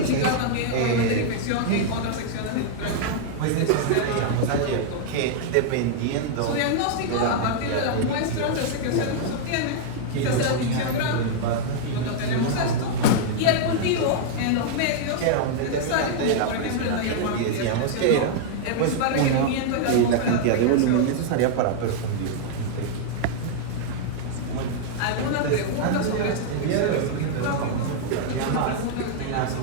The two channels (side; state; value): both; different; correlation -0.01